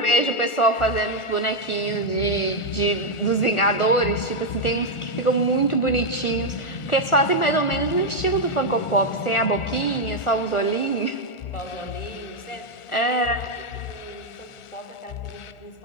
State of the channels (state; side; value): late; right; 1.4 ms